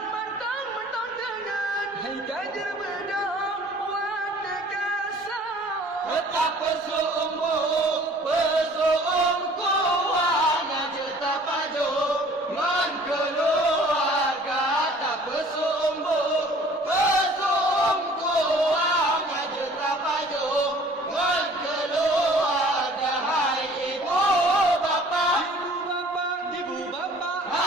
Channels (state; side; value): normal; both; correlation 0.51